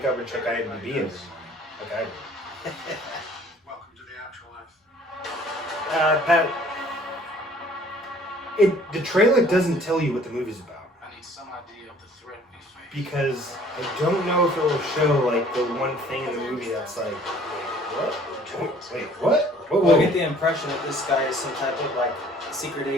up and check IMDb every morning, like I do. Welcome to the afterlife. The trailer doesn't tell you what the movie's about. I need some idea of the threat we face. Because I don't know if it will show, like, the one thing in the movie that's like, wait, what? Well, I get the impression that this guy is some type of, like, secret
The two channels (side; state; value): both; normal; correlation 0.55